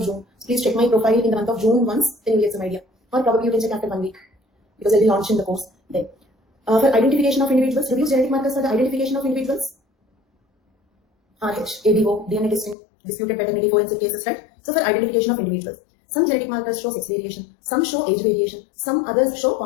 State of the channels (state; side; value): drops out; right; at 12.8 s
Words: June. So please check my profile in the month of June once, then you get some idea. Or probably you can check after 1 week, because I'll be launching the course then. For identification of individuals, reduce genetic markers for the identification of individuals. RH, ABO, DNA testing, disputed paternity, forensic cases, right? So for identification of individuals, some genetic markers show sex variation, some show age variation, some others show